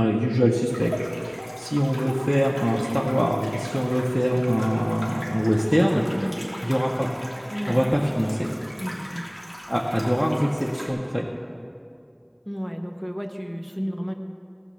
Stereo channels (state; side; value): identical; both; correlation 1.00